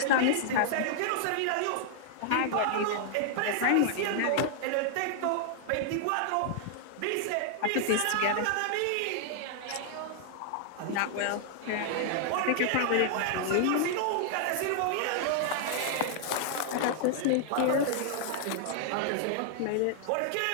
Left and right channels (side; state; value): both; different; correlation -0.01